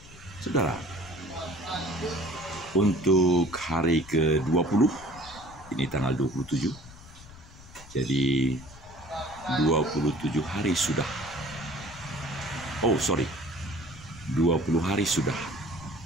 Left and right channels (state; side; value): noise; left; rumble, 19 dB below the sound